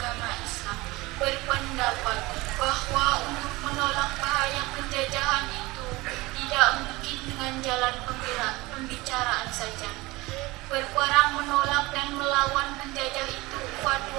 Islam, berpendapat bahwa untuk menolak bahaya penjajahan itu tidak mungkin dengan jalan pembicaraan saja. Berperang menolak dan melawan penjajah itu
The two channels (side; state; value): left; quieter; 21.4 dB